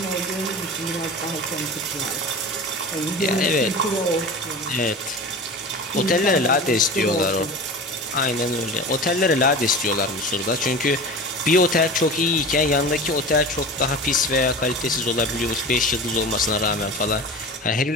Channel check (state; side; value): normal; both; correlation 0.33